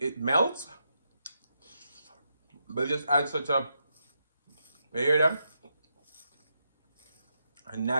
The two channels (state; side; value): inverted; both; correlation -0.83